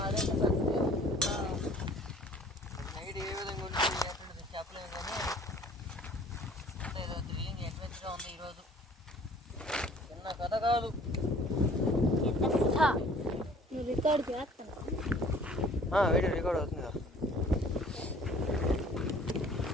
నైట్ ఏ విధంగా ఉంటుంది చెప్పలేము కానీ ఏదో థ్రిల్లింగ్ అడ్వెంచర్గా ఉంది ఈరోజు. చిన్న కథ కాదు. రికార్డ్ చేస్తున్నా వీడియో రికార్డ్ అవుతుంది కదా.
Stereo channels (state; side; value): normal; both; correlation 0.53